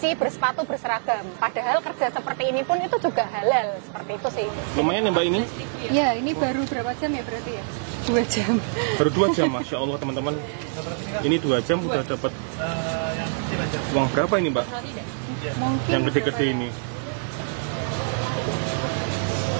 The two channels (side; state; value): left; silent; 62 dB below the other